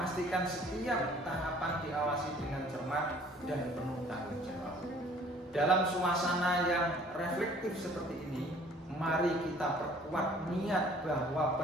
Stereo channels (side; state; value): both; normal; correlation 0.54